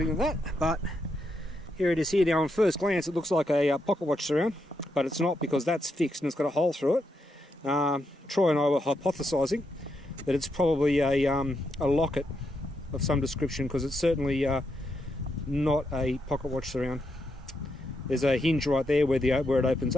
than that, but here it is here. Now on first glance it looks like a pocket watch surround, but it's not, because that's fixed and it's got a hole through it. Troy and I were hypothesising that it's probably a locket of some description, because it's certainly not a pocket watch surround. There's a hinge right there where it opens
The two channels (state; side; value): normal; both; correlation 0.81